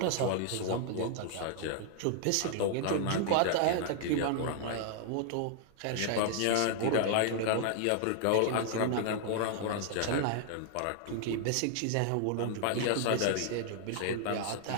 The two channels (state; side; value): different; both; correlation 0.00